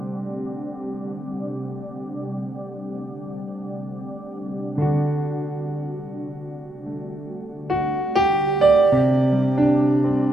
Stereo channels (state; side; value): normal; both; correlation 0.80